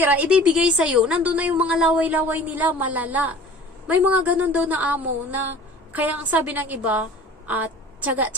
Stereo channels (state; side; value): normal; both; correlation 0.44